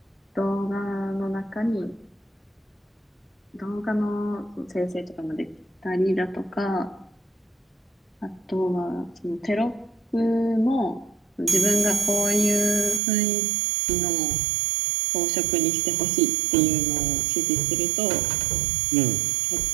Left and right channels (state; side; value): drops out; left; at 13.0 s